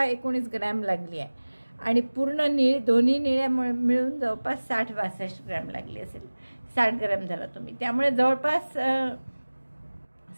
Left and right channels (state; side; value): inverted; both; correlation -1.00